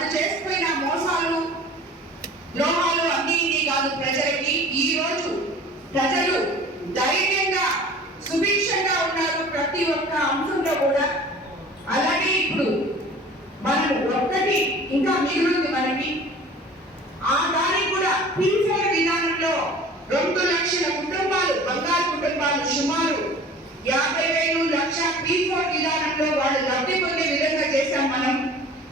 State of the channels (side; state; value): both; normal; correlation 0.44